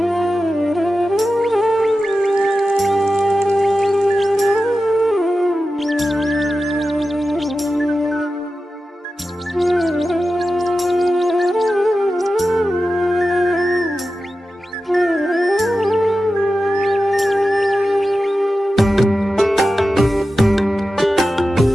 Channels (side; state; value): both; normal; correlation 0.93